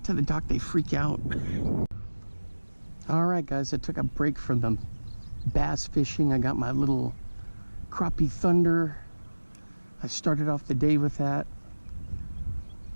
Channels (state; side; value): inverted; both; correlation -1.00